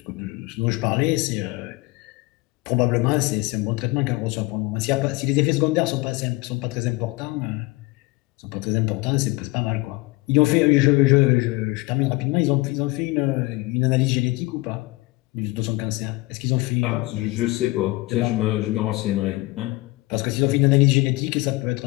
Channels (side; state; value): right; quieter; 22.4 dB